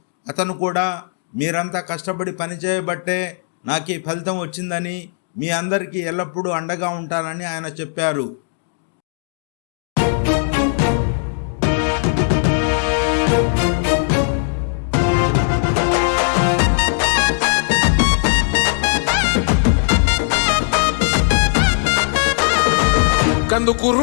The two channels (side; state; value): right; silent; 66 dB below the other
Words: అతను కూడా మీరంతా కష్టపడి పనిచేయబట్టే నాకు ఈ ఫలితం వచ్చిందని, మీ అందరికీ ఎల్లప్పుడూ అండగా ఉంటానని ఆయన చెప్పారు. కందుకూరు